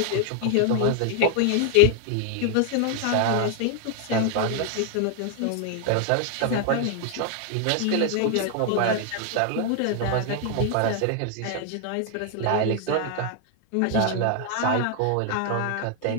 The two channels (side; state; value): both; different; correlation 0.00